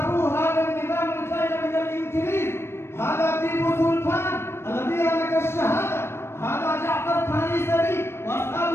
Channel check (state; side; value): late; right; 0.12 ms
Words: هذا النظام الجاي من الإنجليز، هذا تيبو سلطان الذي هلك الشهادة، هذا جعفر الثاني